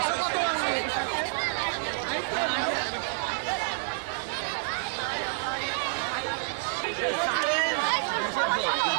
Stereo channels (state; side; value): silent; left; digital silence